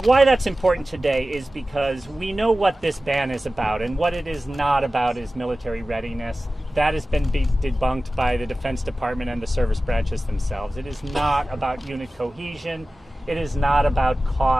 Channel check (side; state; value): both; normal; correlation 0.96